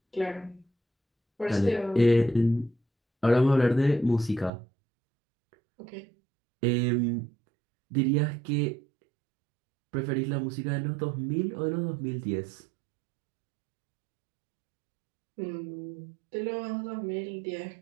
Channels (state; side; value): drops out; left; at 4.5 s